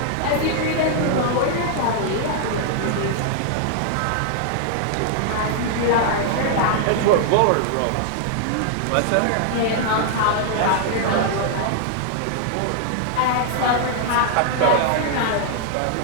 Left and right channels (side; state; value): both; different; correlation 0.00